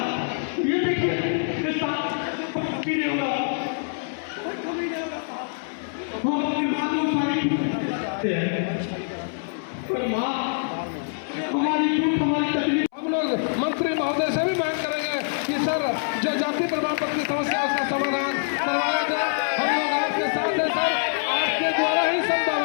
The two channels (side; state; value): right; silent; 62 dB below the other